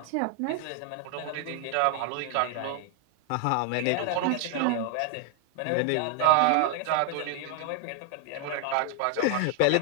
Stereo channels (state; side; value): different; both; correlation 0.00